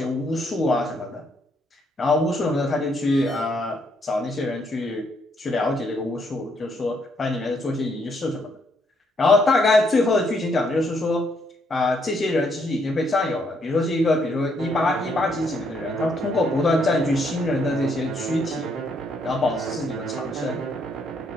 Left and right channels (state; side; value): normal; both; correlation 0.72